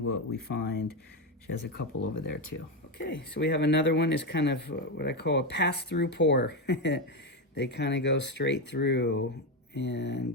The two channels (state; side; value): normal; both; correlation 0.11